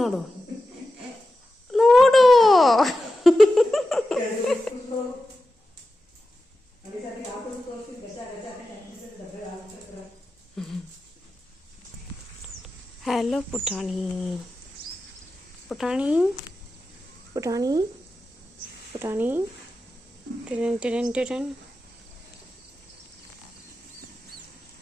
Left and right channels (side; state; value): both; normal; correlation 0.92